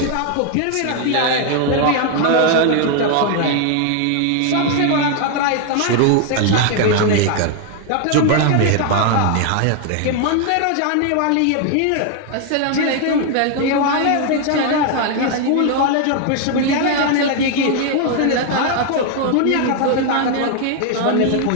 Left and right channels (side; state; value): both; different; correlation 0.00